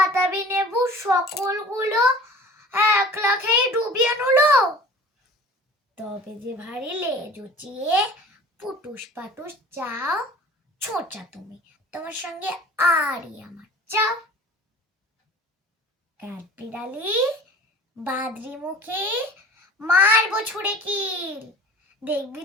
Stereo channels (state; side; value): normal; both; correlation 0.43